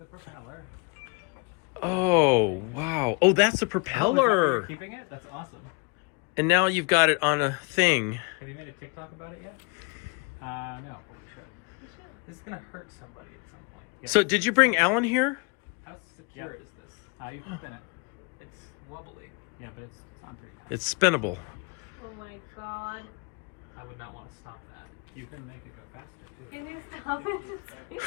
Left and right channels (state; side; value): quieter; right; 30.0 dB